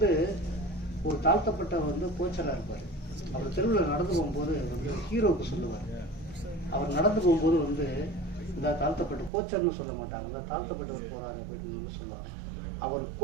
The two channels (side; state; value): left; drops out; at 9.3 s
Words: ஒரு தாழ்த்தப்பட்ட வந்து கோச்சராக இருப்பார். அவர் தெருவில் நடந்து போகும்போது வந்து ஹீரோவுக்கு சொல்லுவார். அவர் நடந்து போகும்போது வந்து இந்த தாழ்த்தப்பட்ட கோச்சர்னு சொல்ல மாட்டாங்க, இந்த தாழ்த்தப்பட்டவர் போகிறாரு அப்படின்னு சொல்லுவாங்க. அவர்